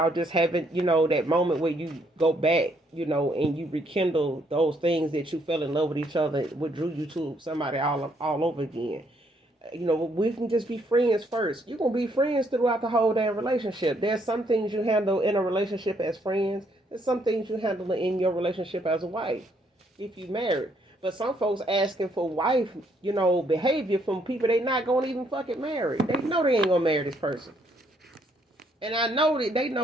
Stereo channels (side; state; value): both; normal; correlation 0.70